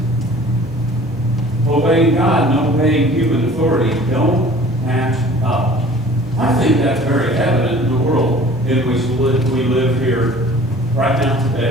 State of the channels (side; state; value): both; normal; correlation 0.48